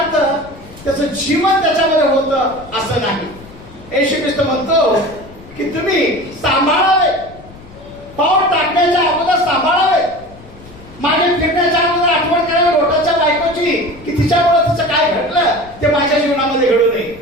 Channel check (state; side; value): noise; left; rumble, 21 dB below the sound